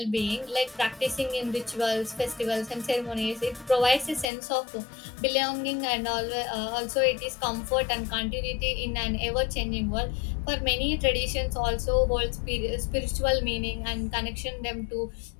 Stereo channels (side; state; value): right; drops out; at 4.2 s